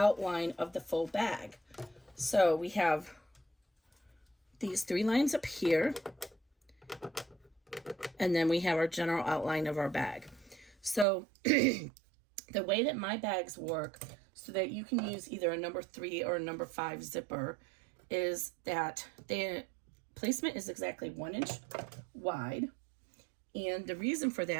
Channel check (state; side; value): drops out; left; at 11.1 s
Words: of the full bag. So we have these 3 lines up here. And then we have our general outline of our bag. So the way that my bags work so that you can use either a number 3 or a number 5 zipper is that the placement is exactly 1 inch wide. And the reason for